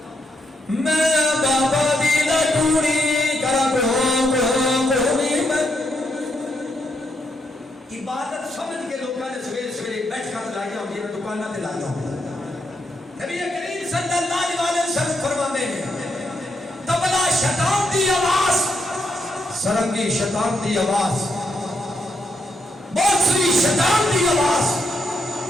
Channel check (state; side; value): normal; both; correlation 0.79